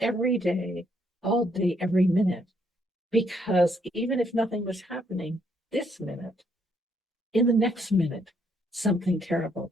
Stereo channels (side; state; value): both; normal; correlation 0.71